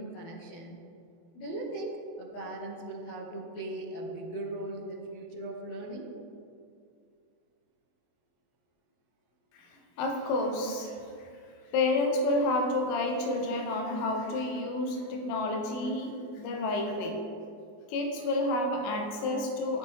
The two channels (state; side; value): late; right; 24 ms